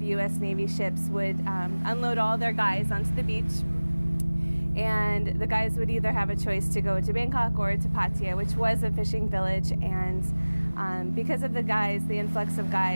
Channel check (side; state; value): both; inverted; correlation -1.00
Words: U.S. Navy ships would unload all their guys onto the beach, and the guys would either have a choice to go to Bangkok or to Pattaya, which was a fishing village. And because of the influx of